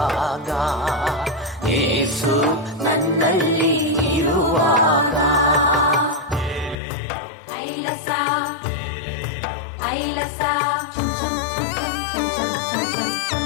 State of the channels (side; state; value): right; drops out; at 6.8 s